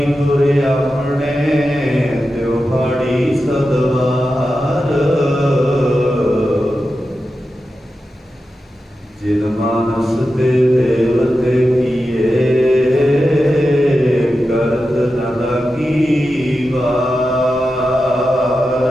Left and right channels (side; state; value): both; normal; correlation 0.91